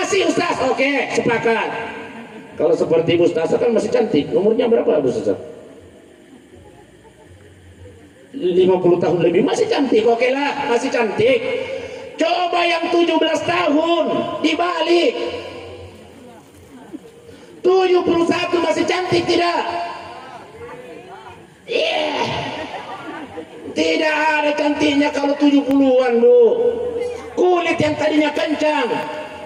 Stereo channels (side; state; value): both; identical; correlation 1.00